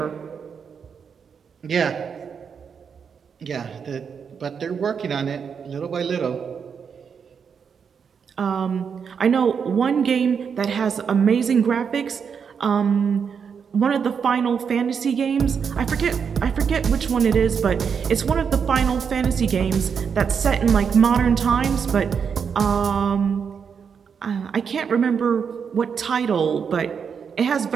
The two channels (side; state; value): left; quieter; 6.6 dB